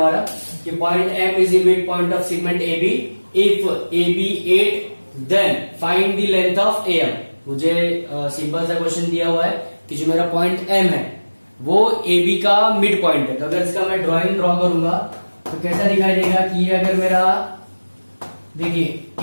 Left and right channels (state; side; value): inverted; both; correlation -1.00